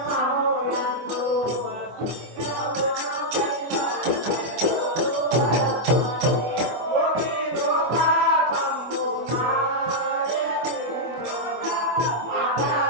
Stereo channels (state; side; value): late; left; 24 ms